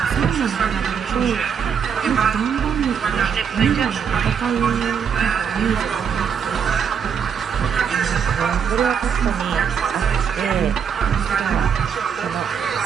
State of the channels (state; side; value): quieter; left; 7.3 dB